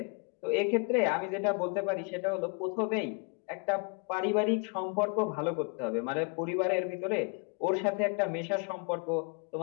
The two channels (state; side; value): quieter; right; 33.8 dB